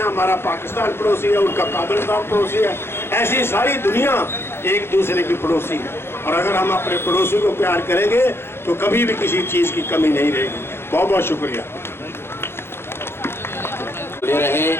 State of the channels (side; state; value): right; late; 0.11 ms